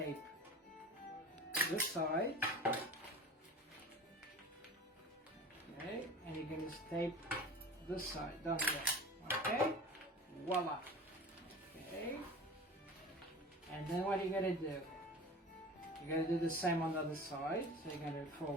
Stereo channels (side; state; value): both; normal; correlation 0.37